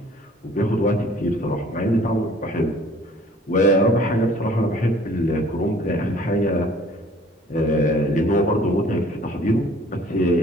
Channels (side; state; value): both; normal; correlation 0.54